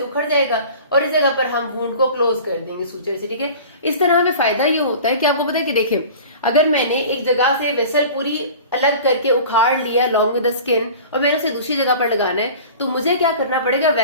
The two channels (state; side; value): inverted; both; correlation -0.40